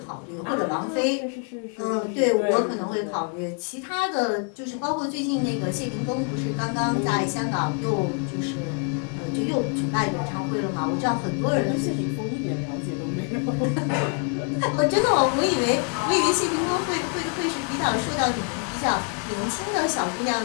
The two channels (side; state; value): right; quieter; 37.7 dB